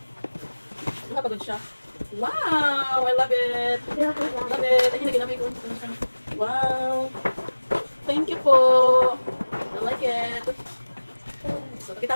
Nakapagod siya. Wow! I love it! Love it! Ay, hindi kinabay ko. Wow! Thank you po! I like it! So,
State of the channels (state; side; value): inverted; both; correlation -1.00